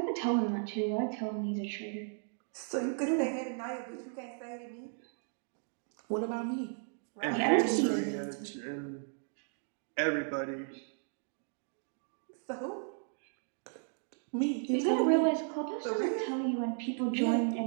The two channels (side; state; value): left; silent; 54 dB below the other